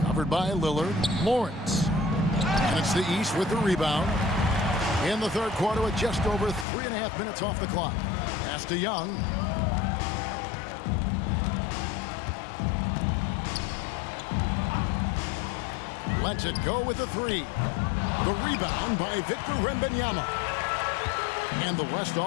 Covered by Lillard. Lawrence. And it's the East with the rebound. In the third quarter with just over 3.5 minutes off the clock. Pass to Young. Lets it go with the 3. The rebound by Victor Wembanyama. And the West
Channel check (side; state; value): right; drops out; at 6.7 s